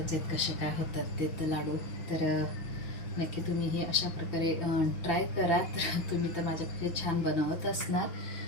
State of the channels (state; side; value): late; right; 5.9 ms